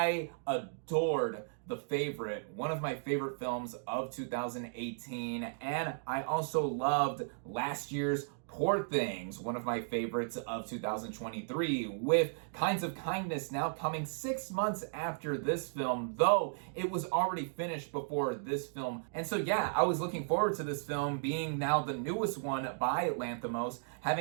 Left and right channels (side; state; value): left; silent; digital silence